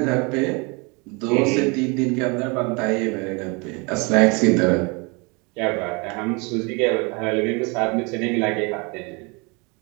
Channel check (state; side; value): quieter; left; 30.1 dB